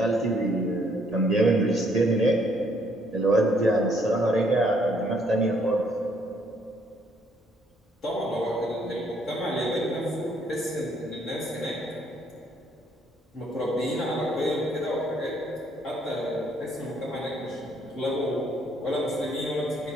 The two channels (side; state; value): both; normal; correlation 0.67